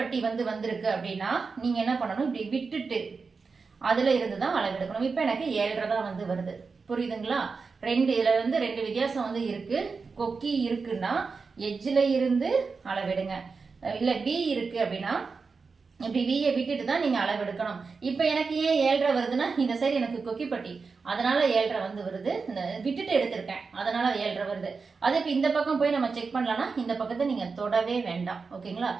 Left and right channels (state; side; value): quieter; left; 4.7 dB